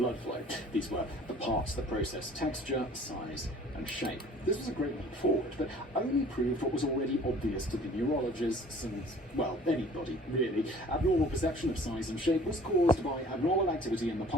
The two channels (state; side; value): normal; both; correlation 0.51